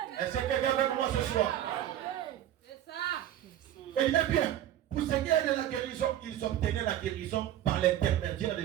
Est-ce que quelqu'un avec moi ce soir? Et il est bien, pour ce qu'ils obtenaient la guérison par l'intermédiaire de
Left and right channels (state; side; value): quieter; left; 12.0 dB